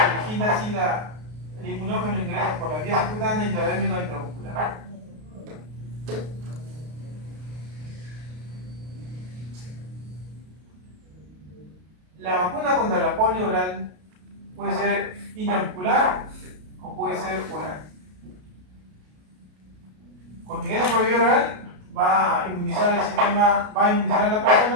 origina así el inmunógeno ingresa por la vía subcutánea, intradérmica o intramuscular. La vacuna contra la polio oral puede ser intramuscular o puede ser oral. Cuando ingresa por vía oral va a inmunizar el sistema, va a inmunizar a la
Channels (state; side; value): late; left; 33 ms